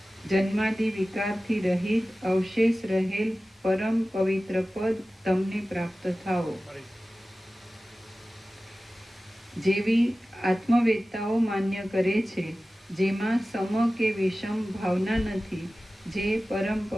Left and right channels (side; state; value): both; normal; correlation 0.96